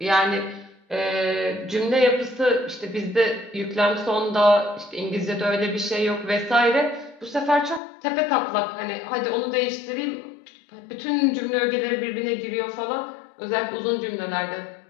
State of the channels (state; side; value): drops out; right; at 7.8 s